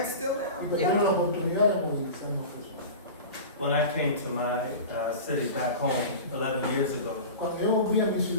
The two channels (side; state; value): both; inverted; correlation -0.32